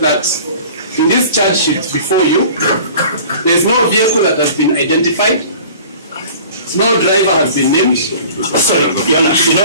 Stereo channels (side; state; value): both; inverted; correlation -0.45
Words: in this charge sheet before you, there is no vehicle that has been identified, no driver has been named. Sorry, Your